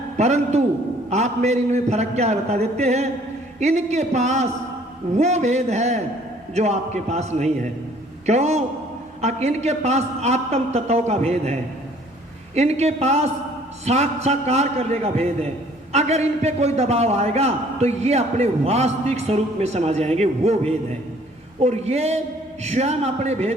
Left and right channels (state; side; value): normal; both; correlation 0.57